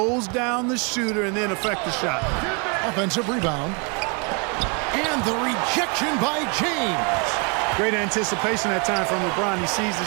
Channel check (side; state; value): left; quieter; 34.0 dB